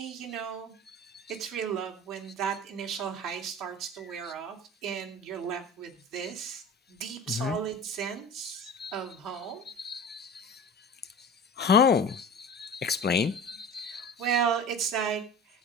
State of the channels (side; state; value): both; normal; correlation 0.35